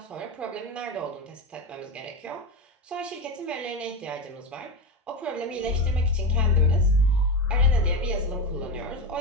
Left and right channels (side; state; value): both; normal; correlation 0.20